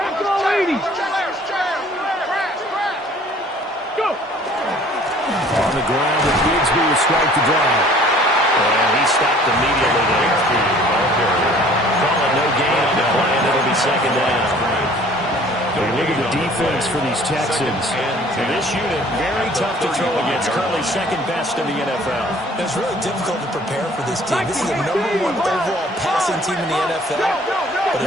all 80. Go. On the ground, and Bigsby will strike the drive. And he stopped immediately there. Call it no gain on the play, and it'll be 2nd down. Look at the defense for these Texans. And this unit, very tough to throw against. Currently 2nd best in the NFL. It's really difficult to prepare for this team. This is the #1 overall passing team in the NFL. But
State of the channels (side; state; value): both; normal; correlation 0.53